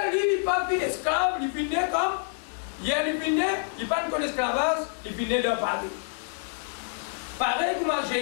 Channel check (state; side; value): silent; right; 60 dB below the other